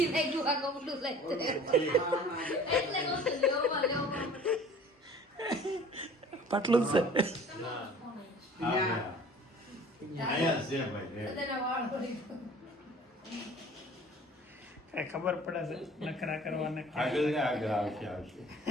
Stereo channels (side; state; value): both; normal; correlation 0.47